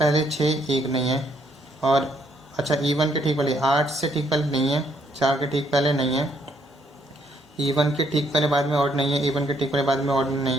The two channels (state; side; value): normal; both; correlation 0.70